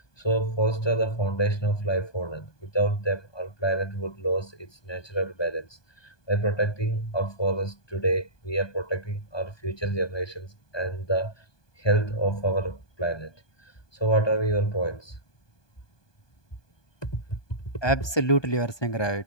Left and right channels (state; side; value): late; right; 1.2 ms